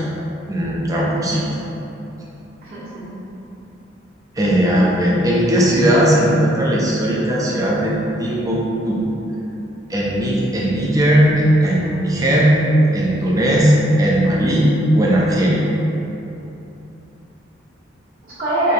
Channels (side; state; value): both; normal; correlation 0.69